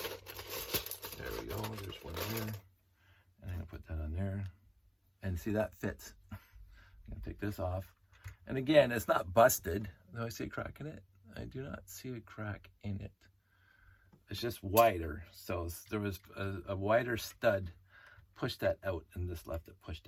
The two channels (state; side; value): identical; both; correlation 1.00